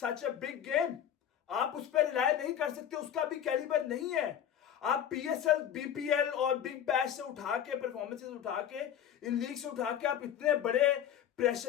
a big game. आप उस पर रिलाई नहीं कर सकते, उसका भी कैलिबर नहीं है। आप पीएसएल, बीपीएल और बिग बैश से उठा के, परफॉर्मेंसेस उठा के, इन लीग से उठा के आप इतने बड़े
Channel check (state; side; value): quieter; right; 9.7 dB